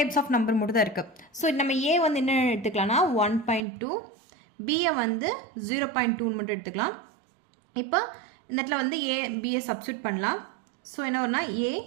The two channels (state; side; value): drops out; left; at 3.6 s